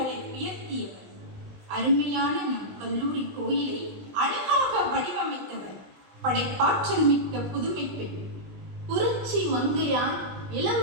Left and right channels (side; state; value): left; late; 20 ms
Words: உயர்த்தியவர். அருமையான நம் கல்லூரி கோயிலை அழகாக வடிவமைத்தவர் படைப்பாற்றல் மிக்க புதுமை பெண். புரட்சி மங்கையார்